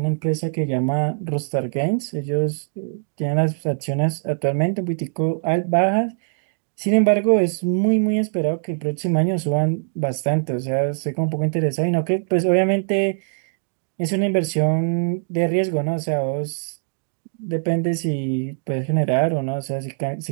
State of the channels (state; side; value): silent; left; digital silence